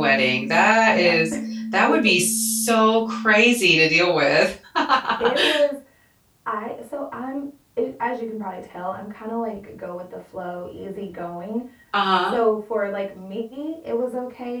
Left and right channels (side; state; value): both; identical; correlation 1.00